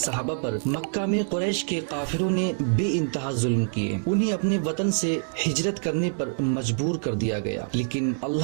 صحابہ پر مکہ میں قریش کے کافروں نے بے انتہا ظلم کیے، انہیں اپنے وطن سے ہجرت کرنے پر مجبور کر دیا گیا، لیکن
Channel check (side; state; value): left; silent; 61 dB below the other